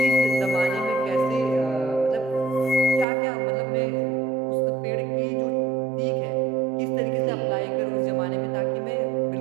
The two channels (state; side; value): drops out; left; at 3.1 s